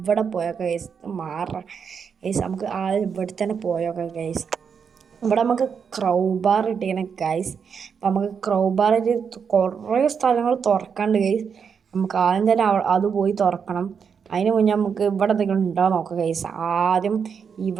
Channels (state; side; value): quieter; left; 6.6 dB